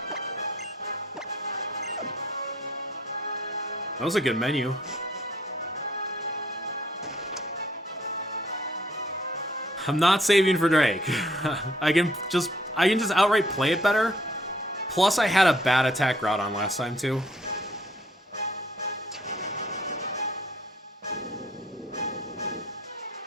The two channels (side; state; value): both; normal; correlation 0.63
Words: That was a good menu. I'm not saving for Drake. I can just outright play it better. Plus, I had a bad attack route on last time, too.